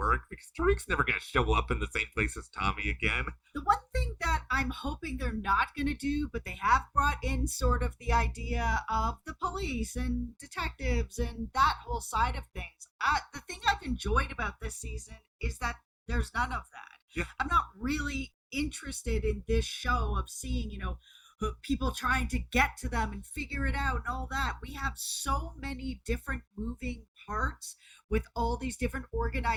because Tariq's never going to show up in the same place as Tommy again. The one thing that I'm hoping they're not going to do, but they have brought in sort of the idea of the police and detectives and that whole side of things. The thing I've enjoyed about this season is that there's none of that. Yeah. I'm not really interested in this show of seeing, people trying to get to them and figure it out and all that. We have so many different moving parts with all these different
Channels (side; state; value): both; identical; correlation 1.00